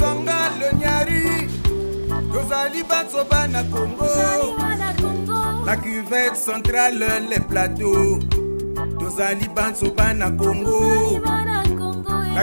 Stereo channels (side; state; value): both; inverted; correlation -1.00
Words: le nyari Tozali Batsoba na Congo La cuvette centrale les plateaux Tozali Batsoba na Congo